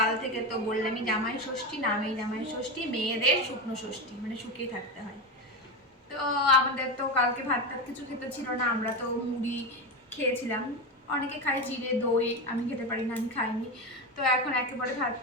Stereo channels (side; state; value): both; normal; correlation 0.17